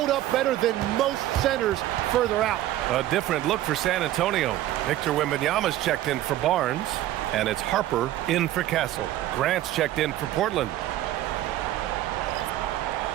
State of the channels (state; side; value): quieter; left; 13.9 dB